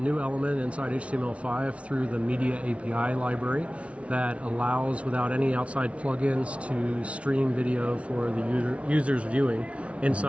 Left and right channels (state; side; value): late; left; 0.062 ms